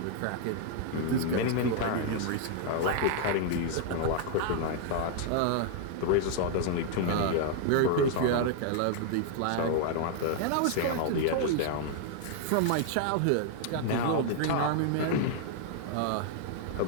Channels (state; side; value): different; both; correlation -0.01